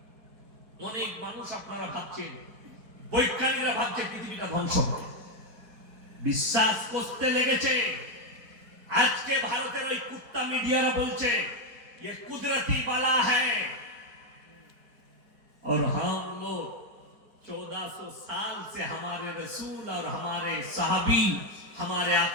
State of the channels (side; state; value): left; late; 4.6 ms